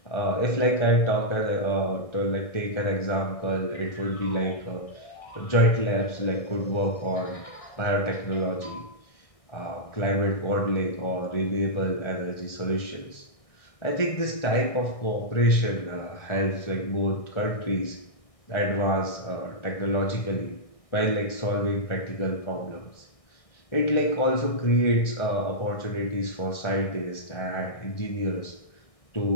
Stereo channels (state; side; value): late; right; 1.6 ms